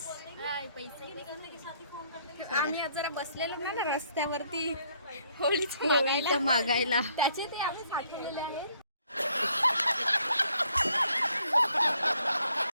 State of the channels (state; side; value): inverted; both; correlation -0.67